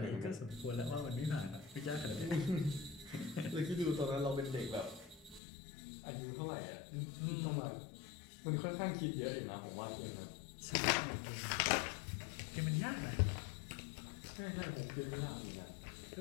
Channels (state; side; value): drops out; right; at 5.4 s